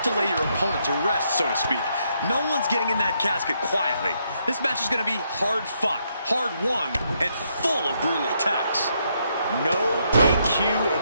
to lay your opponent to rest, so to speak. No one's getting in that casket quietly. This match is going to be hard fought, hard won, and full of brutal attacks. No DQ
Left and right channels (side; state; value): both; inverted; correlation -0.76